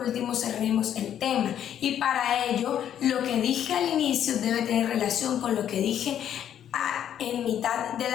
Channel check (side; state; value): right; quieter; 10.0 dB